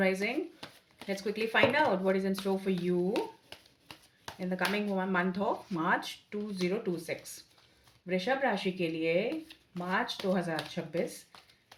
Let's quickly find out what is in store for you in the coming month of March 2026. वृषभ राशि के लिए मार्च 2026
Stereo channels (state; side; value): identical; both; correlation 1.00